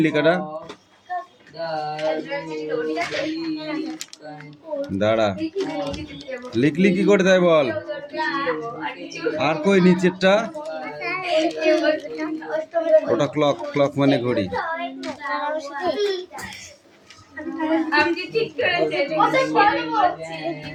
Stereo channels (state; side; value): identical; both; correlation 1.00